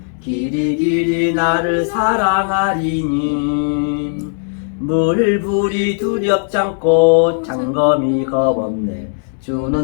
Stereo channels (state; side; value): silent; right; digital silence